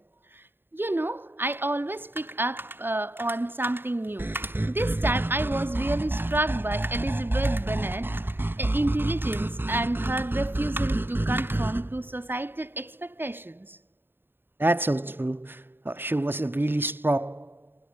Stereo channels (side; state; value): left; late; 0.10 ms